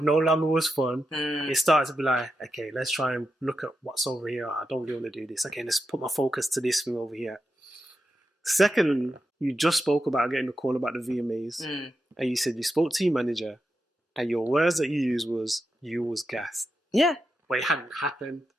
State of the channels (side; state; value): both; normal; correlation 0.88